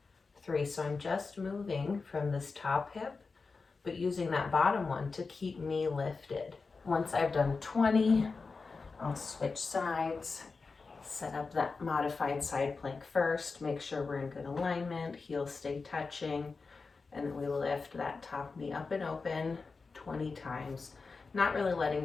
3. So I'm just moving from this top hip, but using that bottom one to keep me lifted. Once I've done 20, I'll switch sides, set up that modified side plank first, make sure we're in good alignment, heels stay touching, and then we lift that top knee up and open 20 times. Not really letting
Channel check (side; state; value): right; quieter; 4.4 dB